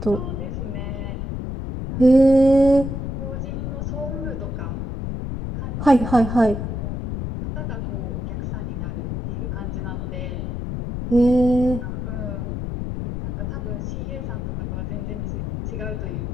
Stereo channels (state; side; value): noise; left; rumble, 4 dB below the sound